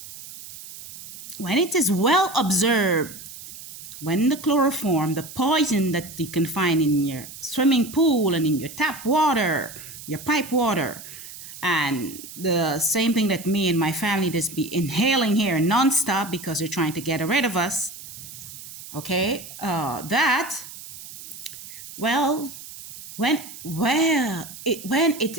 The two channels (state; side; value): noise; right; hiss, 14 dB below the sound